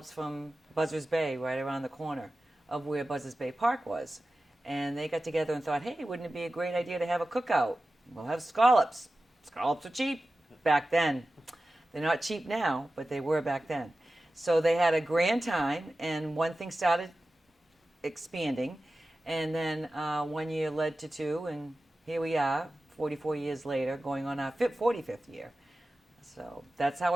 from Buzzards Bay, right around the corner of where Buzzards Bay Park was. And they got together and thought, hey, wouldn't it be a great idea to have a cookout? We'll have scallops. Scallops are cheap back then. They're not cheap now, but they were back then. So they had a grand time, and one thing started expanding. And then 1 year led to two, and here we are, 44 years later, going on our 45th year. So that's how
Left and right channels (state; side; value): normal; both; correlation 0.95